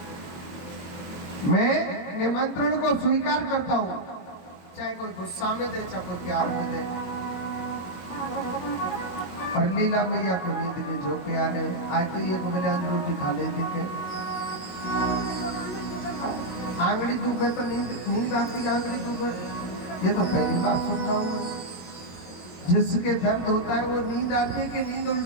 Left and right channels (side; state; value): right; late; 22 ms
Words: मैं निमंत्रण को स्वीकार करता हूँ, चाहे कोई गुस्सा में दे चाहे कोई प्यार में दे। और लीला मैया को नींद के झोंके आ रहे, आज तो ये बजान रोटी खा लेती के आंगड़ी दुख है तो नींद आती, आंगड़ी दुख है, ये तो पहली बार सुन रहा हूँ। जिसके दर्द होता है वो नींद आती है कि नींद